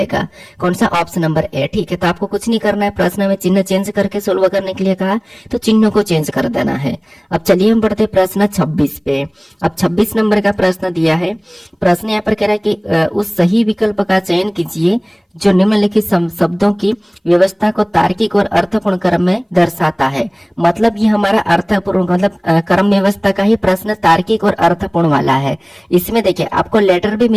कौन सा, ऑप्शन नंबर ए, ठीक है। तो आपको कुछ नहीं करना है, प्रश्न में चिन्ह चेंज करके सोल्व करने के लिए कहा तो चिन्ह को चेंज कर देना है। अब चलिए हम बढ़ते प्रश्न 26 पे। अब 26 नंबर का प्रश्न दिया है। प्रश्न यहाँ पर कह रहा है कि उस सही विकल्प का चयन कीजिए जो निम्नलिखित शब्दों की व्यवस्था को तार्किक और अर्थपूर्ण क्रम में दर्शाता है। मतलब ये हमारा अर्थपूर्ण मतलब क्रम व्यवस्था का ही प्रश्न तार्किक और अर्थपूर्ण वाला है। इसमें देखिए आपको लेटर भी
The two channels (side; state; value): both; identical; correlation 1.00